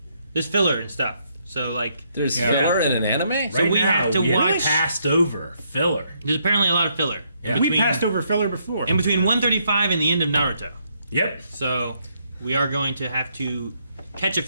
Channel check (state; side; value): inverted; both; correlation -0.74